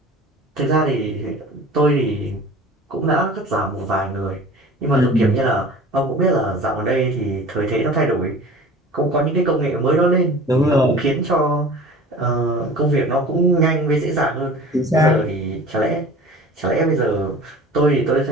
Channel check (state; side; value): normal; both; correlation 0.42